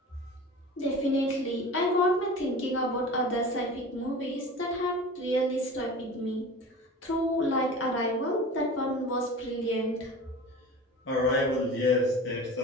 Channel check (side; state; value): both; normal; correlation 0.36